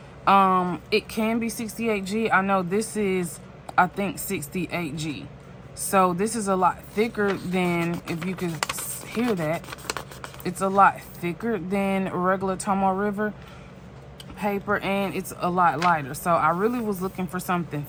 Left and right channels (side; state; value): both; identical; correlation 1.00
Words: It can be 68G. I know this is, I think, 68G. So this is a lot thicker than, if you could hear that, it's a lot thicker than regular Tomoe River paper, and it's a lot lighter. So I really was looking for something